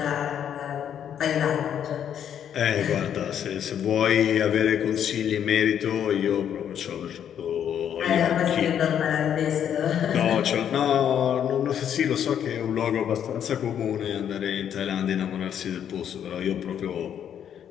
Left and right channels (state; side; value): quieter; right; 9.2 dB